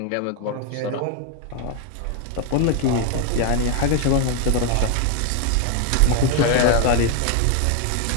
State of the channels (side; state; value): both; different; correlation 0.01